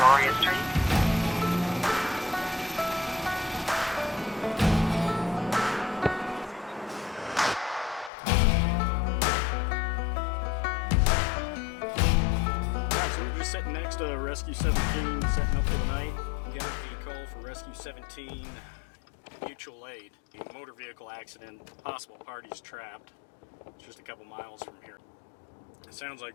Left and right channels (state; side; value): drops out; right; at 8.1 s